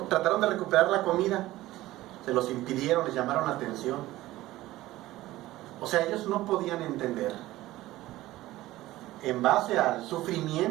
Trataron de recuperar la comida, se los impidieron, les llamaron la atención. O sea, ellos no podían entender, en base al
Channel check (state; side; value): quieter; left; 16.7 dB